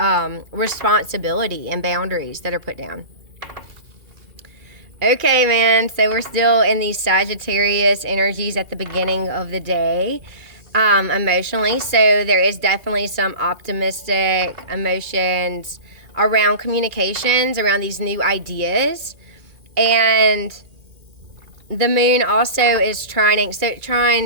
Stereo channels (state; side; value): late; left; 2.4 ms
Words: responsibility and boundaries that are put down. Okay, man, so we're still in these Sagittarius energies at the beginning of the day, emotionally. So there is definitely some optimistic emotions around communications, around these new ideas. And the moon also is trining. So it